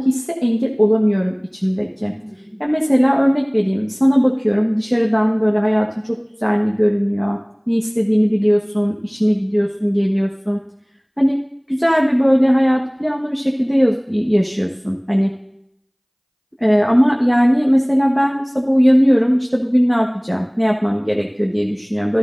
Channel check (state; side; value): identical; both; correlation 1.00